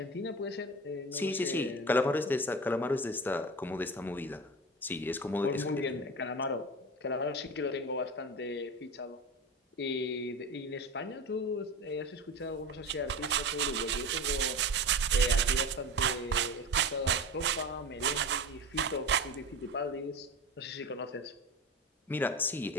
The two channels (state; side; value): normal; both; correlation 0.29